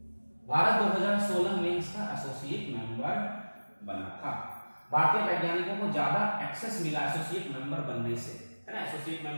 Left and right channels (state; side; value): inverted; both; correlation -1.00